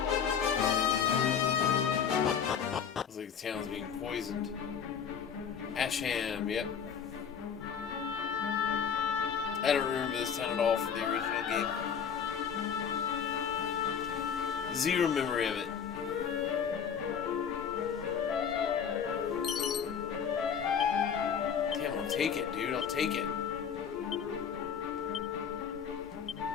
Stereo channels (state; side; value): quieter; right; 7.4 dB